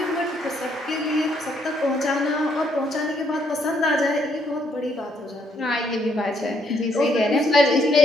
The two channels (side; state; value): both; normal; correlation 0.71